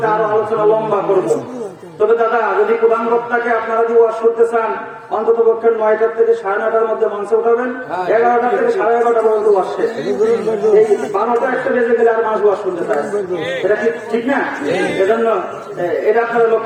আরো আলোচনা লম্বা করবো। তবে দাদা, যদি প্রধান বক্তাকে আপনারা যদি ওয়াজ করতে চান, অন্তত পক্ষে 9টার থেকে 9:30টার মধ্যে মঞ্চে উঠাবেন, 11টা থেকে 11:30 পর্যন্ত ওয়াজ শেষ। এই 12টা একটা বেজে গেলে আর মানুষ ওয়াজ শুনতে চায়, এটা ঠিক না? এজন্য এটা আপনারা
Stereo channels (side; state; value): both; identical; correlation 1.00